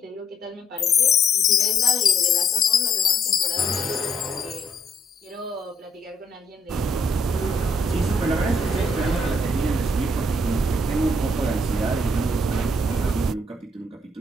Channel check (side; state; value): both; normal; correlation 0.70